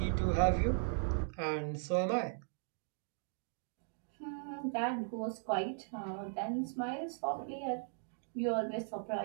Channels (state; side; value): silent; left; digital silence